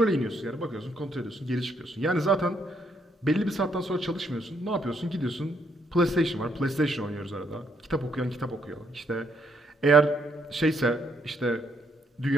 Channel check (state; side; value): normal; both; correlation 0.73